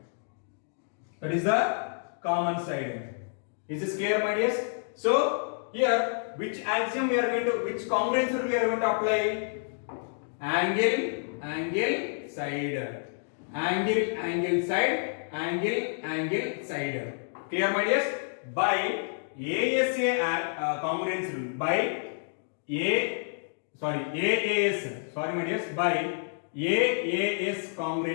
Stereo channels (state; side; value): silent; right; digital silence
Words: That is the common side. Is this clear, my dears? So here, which axiom we are going to, which congruence rule we are going to apply? Angle, side. angle side. Clear, my dears? By ASA congruence rule, by AAS, sorry my dears, by AAS